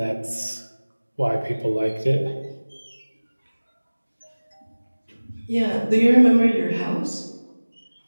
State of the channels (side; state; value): both; inverted; correlation -1.00